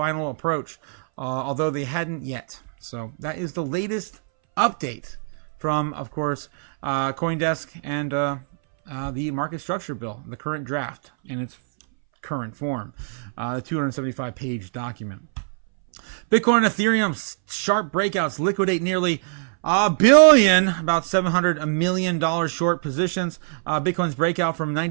approach, although they hadn't yet. So that is the latest update from, of course, CoinDesk and the market structure bill, the current draft in its current form, the 275-page document. Bitcoin and Ethereum sharp breakouts liquidate nearly $1 billion, about $700 million short positions. Bitcoin's breakout from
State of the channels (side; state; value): left; silent; 62 dB below the other